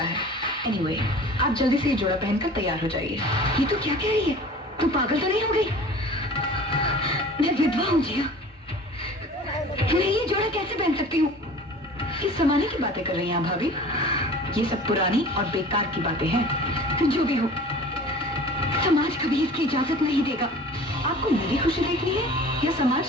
है। एनीवे, आप जल्दी से ये जोड़ा पहनकर तैयार हो जाइए। ये तो क्या कह रही है? तू पागल तो नहीं हो गई? मैं विधवा हूँ जिया, मैं ये जोड़ा कैसे पहन सकती हूँ? किस जमाने की बातें कर रही हैं भाभी? ये सब पुरानी और बेकार की बातें हैं। जो भी हो, समाज कभी इसकी इजाजत नहीं देगा। आपको मेरी खुशी देखनी है या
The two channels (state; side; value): normal; both; correlation 0.43